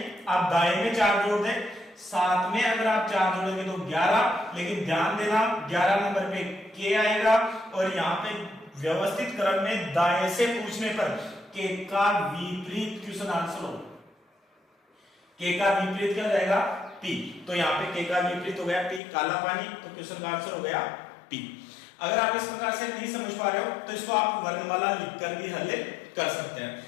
आप दाएं में 4 जोड़ दें। 7 में अगर आप 4 जोड़ेंगे तो 11, लेकिन ध्यान देना 11 नंबर पे के आएगा, और यहां पे व्यवस्थित क्रम में दाएं से पूछने पर के का विपरीत क्वेश्चन आंसर हो। के का विपरीत क्या हो जाएगा, पी। तो यहाँ पे के का विपरीत हो गया पी, काला पानी, तो क्वेश्चन का आंसर हो गया पी। अगर आप इस प्रकार से नहीं समझ पा रहे हो तो इसको आप वर्णमाला लिखकर भी हल कर सकते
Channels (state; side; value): drops out; right; at 19.0 s